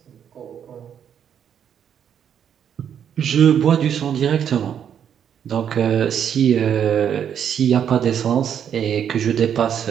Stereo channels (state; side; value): quieter; left; 8.7 dB